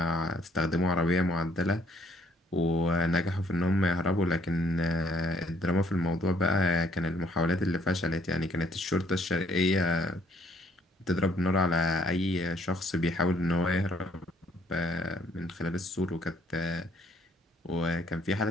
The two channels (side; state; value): both; normal; correlation 0.65